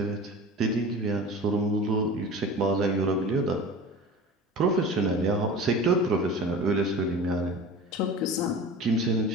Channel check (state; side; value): normal; both; correlation 0.36